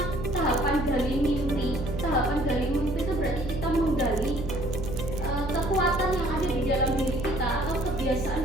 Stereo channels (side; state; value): right; noise; hum, 6 dB below the sound